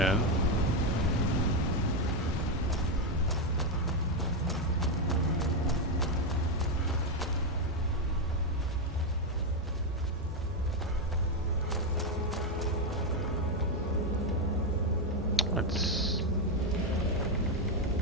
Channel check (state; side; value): normal; both; correlation 0.05